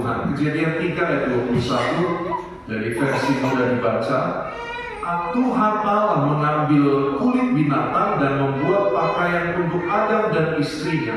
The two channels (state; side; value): identical; both; correlation 1.00